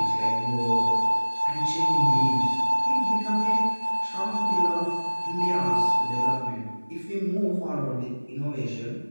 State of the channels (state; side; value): inverted; both; correlation -1.00